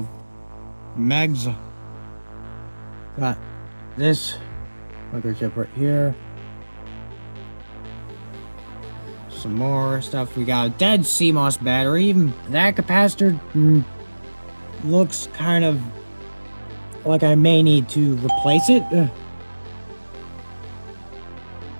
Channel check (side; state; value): both; inverted; correlation -1.00